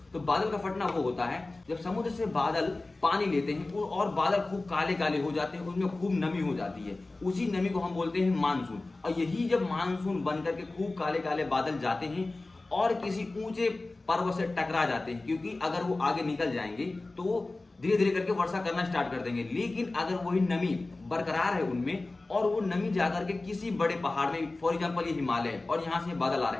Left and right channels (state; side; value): quieter; right; 3.1 dB